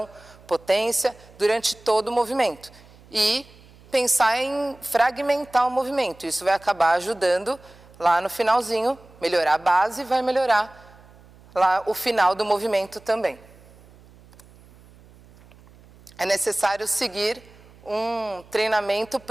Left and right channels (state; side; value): noise; right; hum, 25 dB below the sound